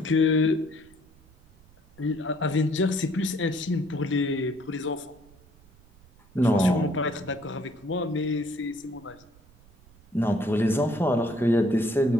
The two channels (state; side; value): noise; right; rumble, 27 dB below the sound